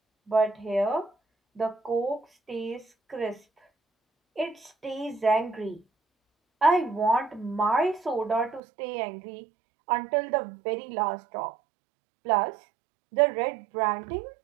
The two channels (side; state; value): left; drops out; at 8.6 s